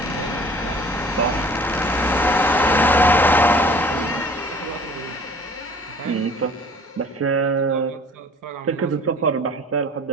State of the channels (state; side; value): normal; both; correlation 0.49